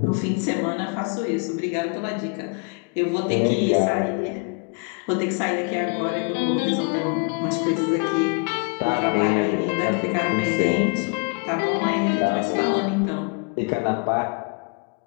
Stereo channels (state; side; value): quieter; right; 33.9 dB